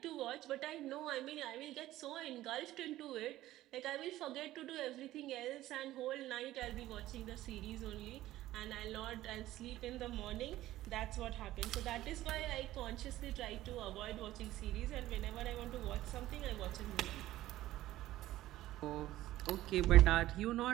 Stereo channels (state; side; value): quieter; left; 15.2 dB